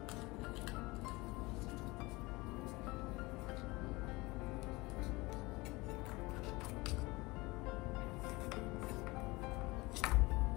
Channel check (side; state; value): right; quieter; 22.9 dB